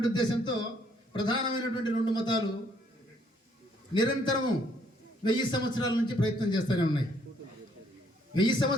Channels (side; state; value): both; normal; correlation 0.67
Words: ఉద్దేశంతో ప్రధానమైనటువంటి 2 మతాలు నిరంతరము 1000 సంవత్సరాల నుంచి ప్రయత్నం చేస్తూనే ఉన్నాయి. 1000